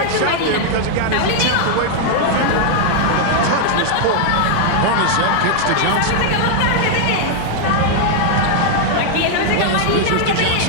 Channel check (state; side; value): different; both; correlation 0.00